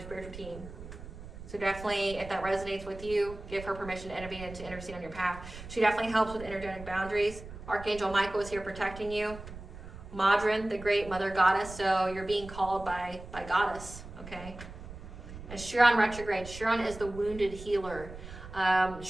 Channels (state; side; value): noise; right; rumble, 13 dB below the sound